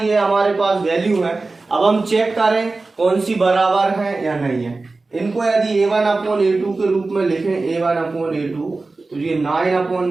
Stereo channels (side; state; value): left; quieter; 3.6 dB